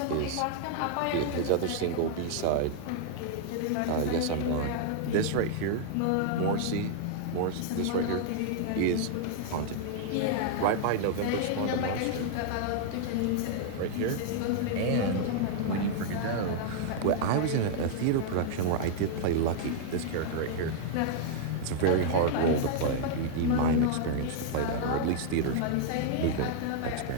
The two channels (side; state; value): both; different; correlation -0.01